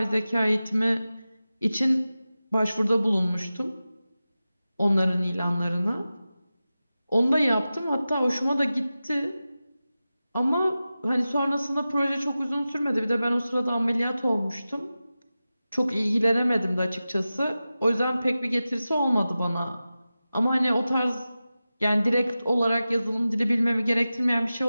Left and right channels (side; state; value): both; inverted; correlation -0.94